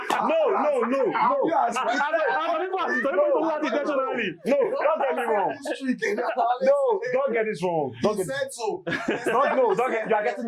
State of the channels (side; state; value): both; identical; correlation 1.00